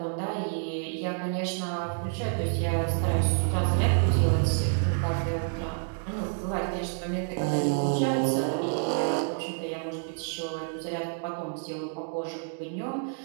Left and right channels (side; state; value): left; silent; 59 dB below the other